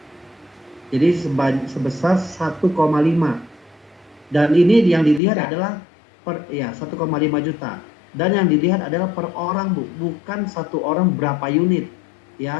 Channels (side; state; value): right; drops out; at 5.2 s